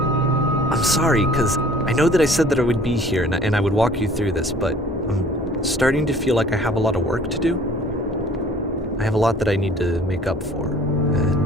I'm sorry, because I know that I said that I would be here and I would walk you through this, but I'm starting to feel like I have a lot of work to do. I have a lot that I need to make up for,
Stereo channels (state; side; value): normal; both; correlation 0.51